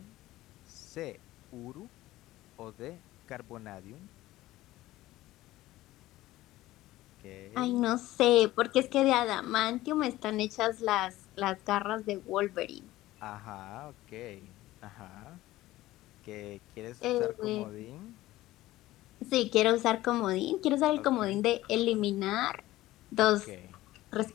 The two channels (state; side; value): quieter; right; 16.5 dB